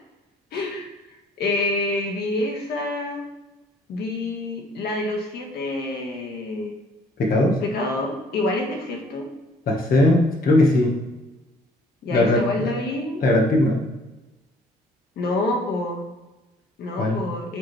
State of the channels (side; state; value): both; normal; correlation 0.58